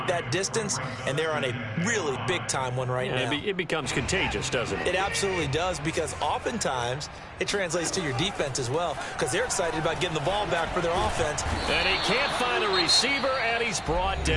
that distance, and they're on a really big-time one right now. It becomes contagious, doesn't it? It absolutely does, because oftentimes it translates to your defense as well, because they're excited about getting the ball back for their offense. And he can't find a receiver, and he's brought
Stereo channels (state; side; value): identical; both; correlation 1.00